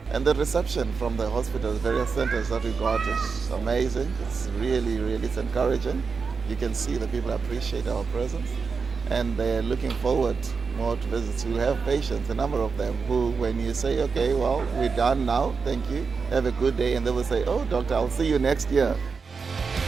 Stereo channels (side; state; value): left; quieter; 5.1 dB